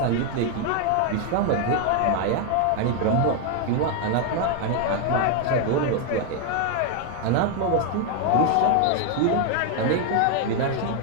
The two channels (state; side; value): different; both; correlation 0.01